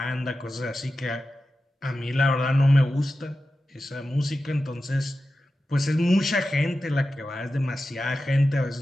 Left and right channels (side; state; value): both; normal; correlation 0.93